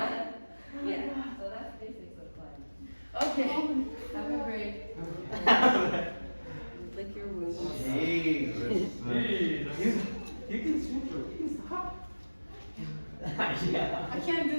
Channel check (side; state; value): both; inverted; correlation -1.00